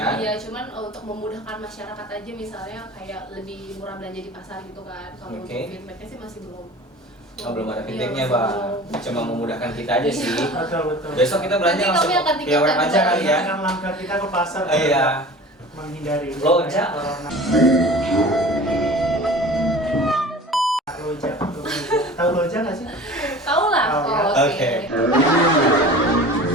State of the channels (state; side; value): normal; both; correlation 0.40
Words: Iya, cuman untuk memudahkan masyarakat aja misalnya kayak lebih murah belanja di pasar gitu kan. Kalau Oke. untuk feedbacknya sih masih belum. Oh belum ada Iya, feedbacknya masih Bang. belum. Cuma memudahkan kita aja sih. Betul, betul. Besok kita belanja Nanti langsung kami akan via web tingkatkan aja kali ya. Kan langkah kita ke pasar. Iya. Menghindari Loja. corona. Loja. Tahu Loja nggak sih? Tahu lah. Tahu ya. Oh, Oke. Iya.